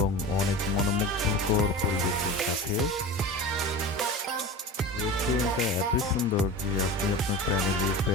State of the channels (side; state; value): both; normal; correlation 0.32